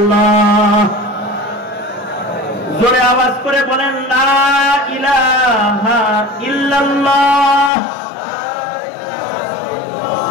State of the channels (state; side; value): drops out; right; at 7.7 s